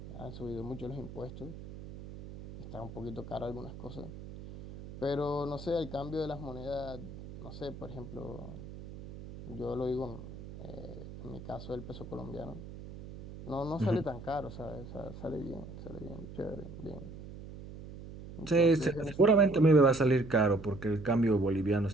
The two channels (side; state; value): right; noise; hum, 13 dB below the sound